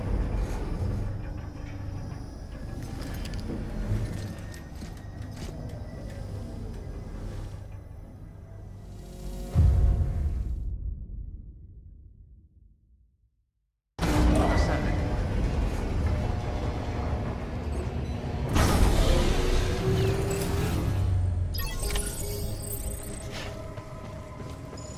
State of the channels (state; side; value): identical; both; correlation 1.00